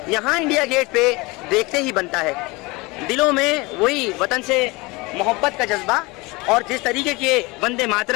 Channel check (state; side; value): quieter; right; 24.4 dB